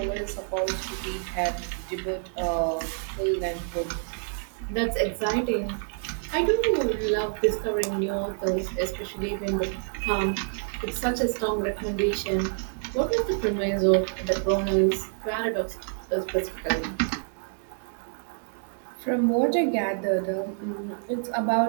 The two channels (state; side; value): silent; left; 59 dB below the other